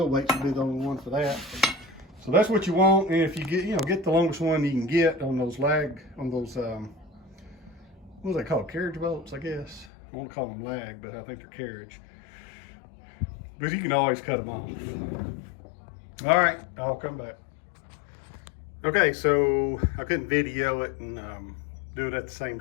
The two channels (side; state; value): right; drops out; at 9.9 s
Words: weights would be the only one for that. So that's what you want. And if you get the longest one you can get on those what do they call, carriage bolts, I guess. I won't call them lag, but I think they're carriage. But you can always cut them off. All right, I'll come back. Okay, so I couldn't video it and do it at the same